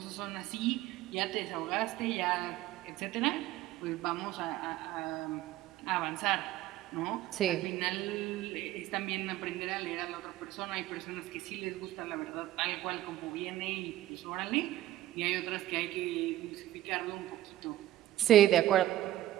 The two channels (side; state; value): left; quieter; 14.3 dB